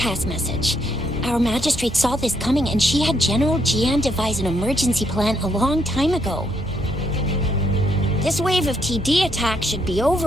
message. Our magistrate saw this coming and she had General Jian devise an emergency plan a long time ago. This wave of TD attacks should be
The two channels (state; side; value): normal; both; correlation 0.74